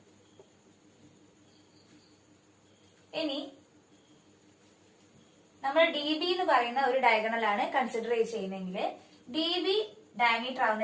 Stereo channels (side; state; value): both; identical; correlation 1.00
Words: ഇനി നമ്മൾ ഡി ബി എന്ന് പറയുന്ന ഒരു ഡയഗണൽ ആണ് കൺസിഡർ ചെയ്യുന്നതെങ്കിൽ ഡി ബി ഡയമീറ്റർ ആവുന്ന